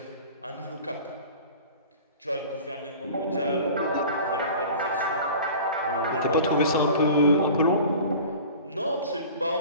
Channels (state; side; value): inverted; both; correlation -0.41